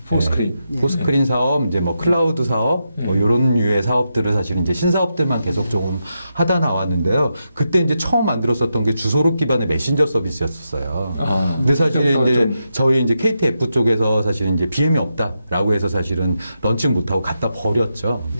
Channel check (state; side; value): inverted; both; correlation -0.86